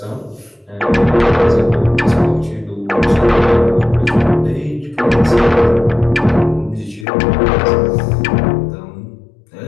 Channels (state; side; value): drops out; right; at 7.1 s